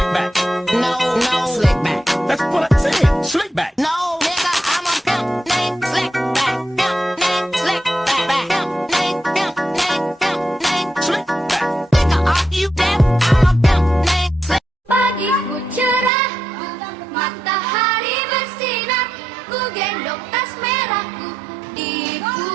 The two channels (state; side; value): drops out; left; at 16.1 s